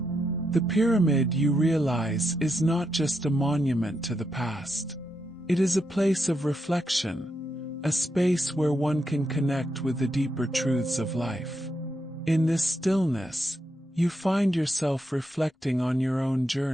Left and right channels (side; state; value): both; normal; correlation 0.82